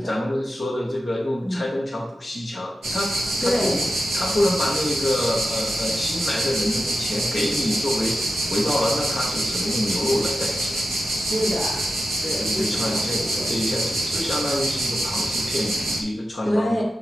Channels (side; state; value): both; normal; correlation 0.91